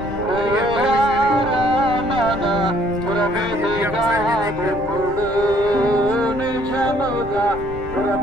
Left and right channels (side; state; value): left; noise; rumble, 13 dB below the sound